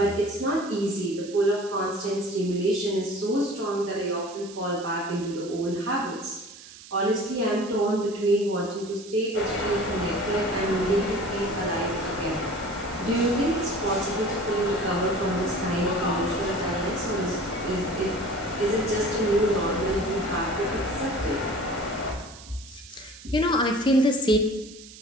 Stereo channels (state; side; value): noise; right; hiss, 18 dB below the sound